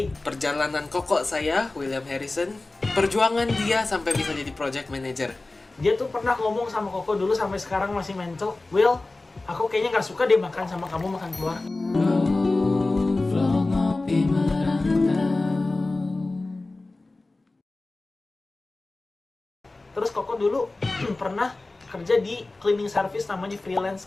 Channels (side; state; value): right; quieter; 3.1 dB